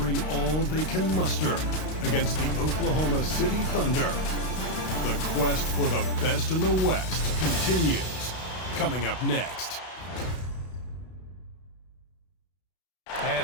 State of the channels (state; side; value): late; right; 32 ms